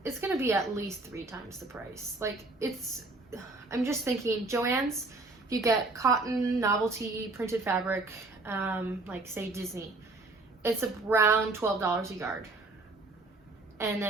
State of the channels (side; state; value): left; quieter; 3.2 dB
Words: it's gonna be at least 3 times the price. Like, it's, I'm just thinking, Joann's, if you get cotton novelty printed fabric, like say Disney, it's around $12 a yard. And